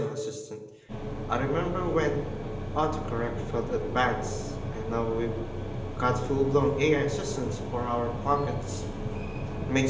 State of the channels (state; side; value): identical; both; correlation 1.00